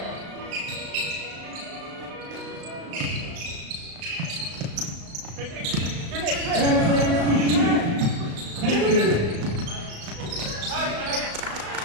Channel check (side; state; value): left; late; 35 ms